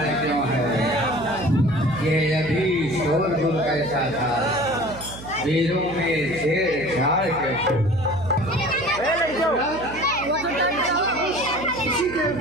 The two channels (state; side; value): noise; right; hum, 14 dB below the sound